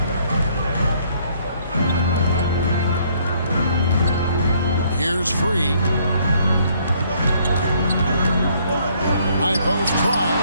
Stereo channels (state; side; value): inverted; both; correlation -0.65